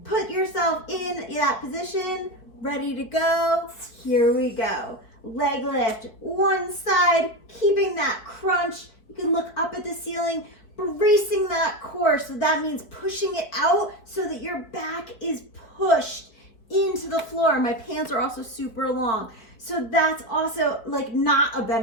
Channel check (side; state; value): right; late; 4.6 ms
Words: put yourself in that position, ready to go. Here we go. Leg lift, one side, keeping that crunch. You can look up at the ceiling, bracing that core. So that means pushing it out so that your back is pushed into the floor. My pants are also super long. So that's also like not a